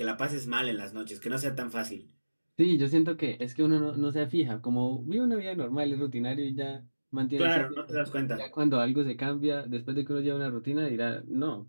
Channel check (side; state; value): both; inverted; correlation -1.00